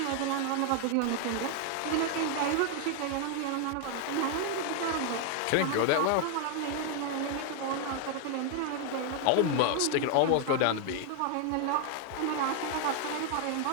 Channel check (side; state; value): both; different; correlation 0.00